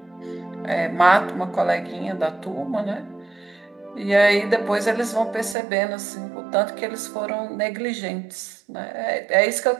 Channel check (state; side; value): drops out; left; at 5.6 s